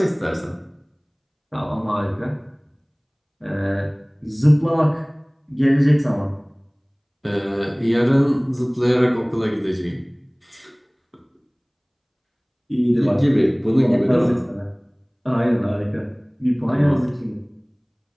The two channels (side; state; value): both; identical; correlation 1.00